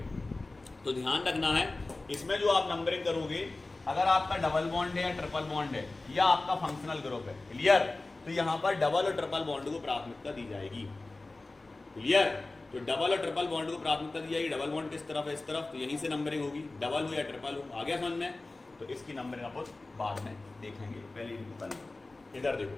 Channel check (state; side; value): quieter; right; 3.2 dB